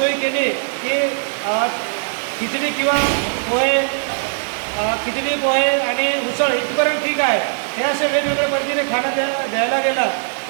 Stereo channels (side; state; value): left; silent; digital silence